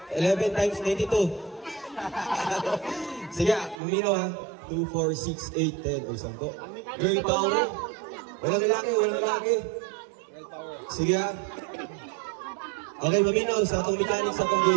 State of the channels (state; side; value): drops out; left; at 3.8 s